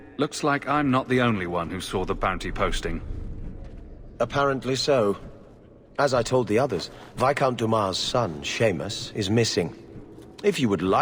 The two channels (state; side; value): identical; both; correlation 1.00